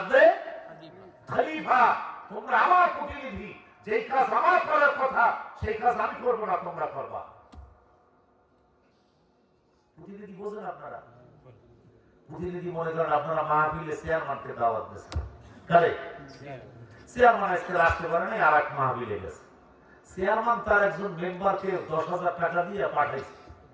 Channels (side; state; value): both; identical; correlation 1.00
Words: খলিফা, তোমরা আমার প্রতিনিধি, যেই কাজ আমার করার কথা সেই কাজ আমি করবো না, তোমরা করবা। প্রতিনিধি বোঝেন আপনারা? প্রতিনিধি মনে করেন আপনারা মাহফিলে চেয়ারম্যানকে দাওয়াত দিয়েছেন, কারে? চেয়ারম্যান আজকে আসতে পারে নাই, আর এক মাহফিলে গেছে। চেয়ারম্যান তার একজন মেম্বারকে 10,000 টাকা দিয়ে পাঠাইছে।